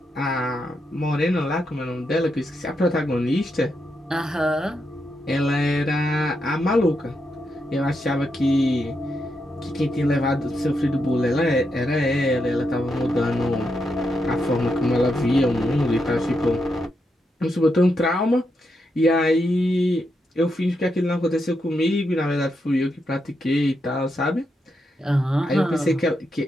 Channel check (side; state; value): both; normal; correlation 0.83